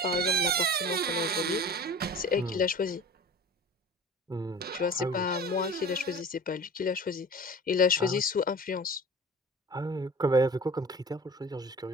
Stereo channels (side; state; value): both; normal; correlation 0.40